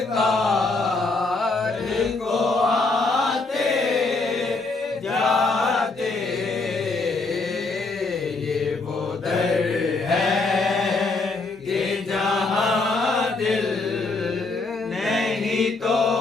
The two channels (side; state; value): right; quieter; 3.6 dB